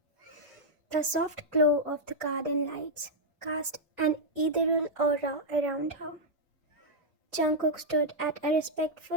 The soft glow of the garden lights cast an ethereal aura around her. Jungkook stood at a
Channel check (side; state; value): both; normal; correlation -0.04